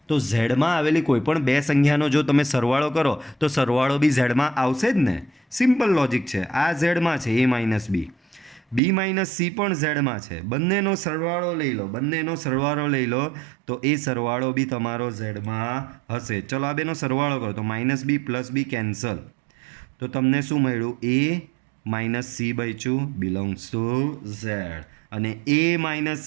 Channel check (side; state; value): left; drops out; at 8.8 s